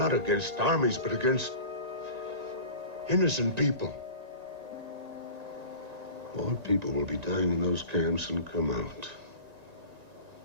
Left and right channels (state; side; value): late; left; 1.9 ms